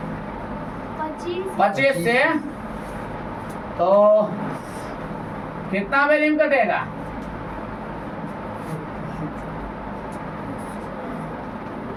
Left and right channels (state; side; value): identical; both; correlation 1.00